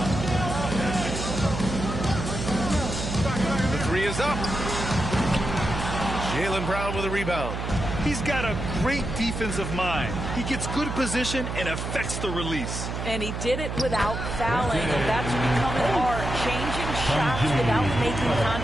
The three is up. Jaylen Brown with a rebound. He's got a great defensive mind. He gets good position and affects the release. And he did it without fouling, and that's becoming art. Changing shots without making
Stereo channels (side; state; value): right; noise; hum, 4 dB below the sound